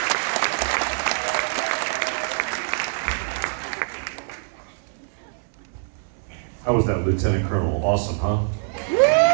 How was that, Lieutenant Colonel? Awesome, huh?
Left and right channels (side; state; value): left; silent; digital silence